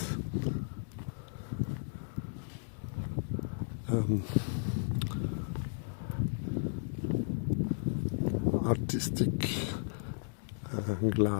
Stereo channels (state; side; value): silent; right; digital silence